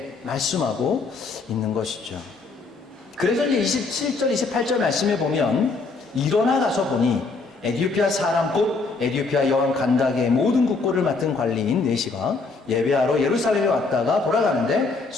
말씀하고 있는 것이죠. 그래서 이제 27절 28절 말씀에 보면 일어나 가서 보니 에디오피아 사람 곧 에디오피아 여왕 간다게의 모든 국고를 맡은 관리인 네시가 예배하러 예루살렘에 왔다가 돌아가는데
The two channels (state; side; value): quieter; right; 4.0 dB